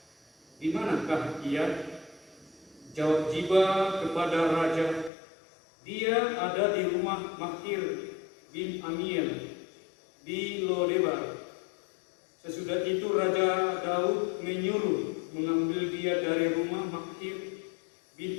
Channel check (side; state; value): right; drops out; at 5.1 s